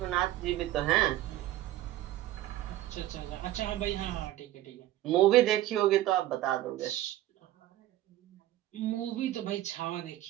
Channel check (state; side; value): quieter; left; 14.3 dB